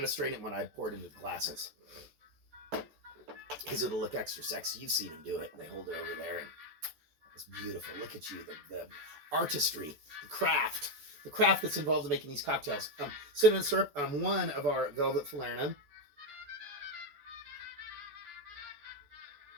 to strain it when I pour it into the glasses because it'll look extra sexy. You've seen them do it. They hold it over there, and it's beautiful. Look at you, the artistry, the craft that's involved in making these cocktails. Cinnamon syrup, 1 of our velvet falernum.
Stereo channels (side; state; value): left; late; 14 ms